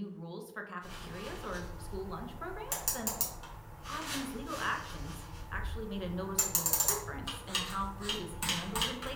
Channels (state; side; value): identical; both; correlation 1.00